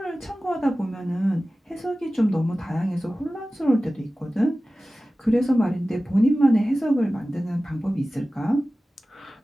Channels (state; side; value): normal; both; correlation 0.96